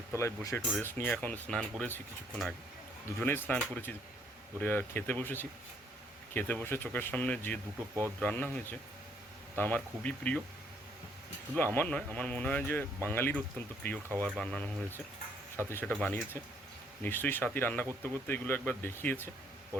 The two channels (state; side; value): normal; both; correlation 0.67